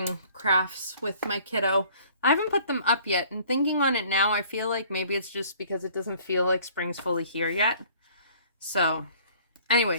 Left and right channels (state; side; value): inverted; both; correlation -0.54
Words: crafts with my kiddo. I haven't put them up yet, and thinking on it now, I feel like maybe it's just because it doesn't feel like spring's fully here yet. So,